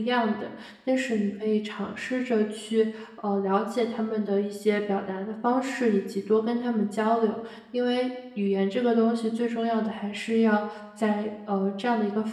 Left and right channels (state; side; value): identical; both; correlation 1.00